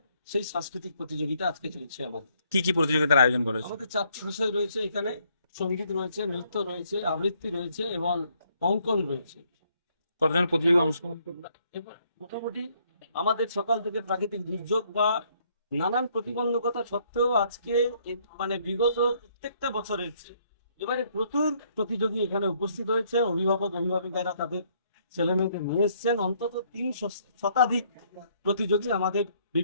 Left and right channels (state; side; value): inverted; both; correlation -0.68